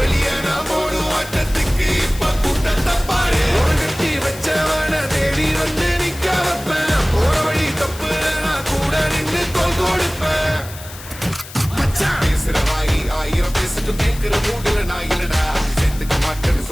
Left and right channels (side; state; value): left; noise; hiss, 15 dB below the sound